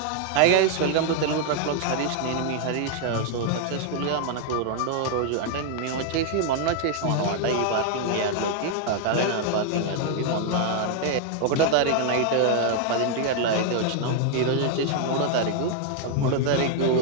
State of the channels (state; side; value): different; both; correlation 0.00